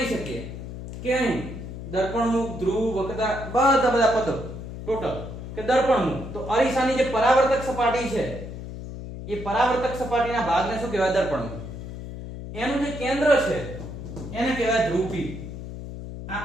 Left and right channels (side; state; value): left; noise; hum, 9 dB below the sound